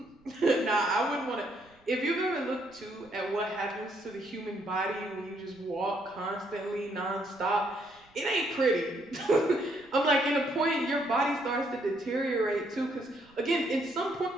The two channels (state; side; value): noise; right; rumble, 30 dB below the sound